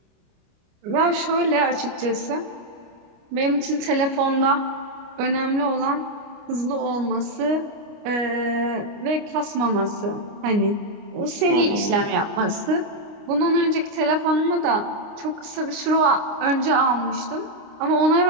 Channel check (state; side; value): late; left; 29 ms